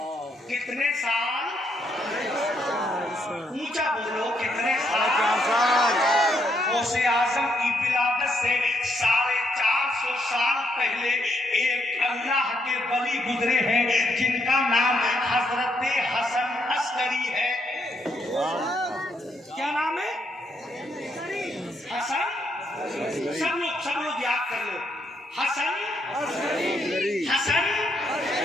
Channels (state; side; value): normal; both; correlation 0.75